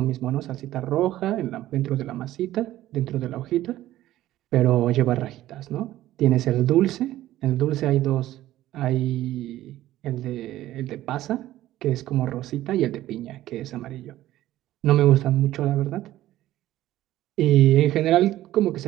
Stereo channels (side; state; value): left; quieter; 14.5 dB